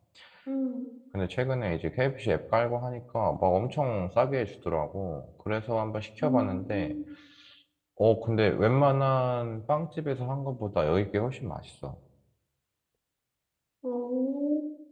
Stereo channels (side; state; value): both; identical; correlation 1.00